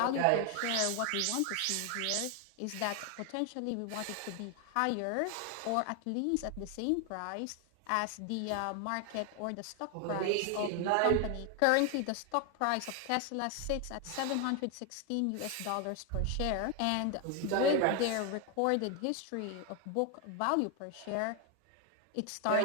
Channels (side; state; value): both; different; correlation 0.01